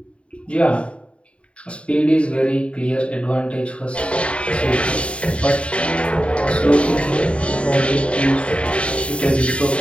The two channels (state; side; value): late; right; 0.060 ms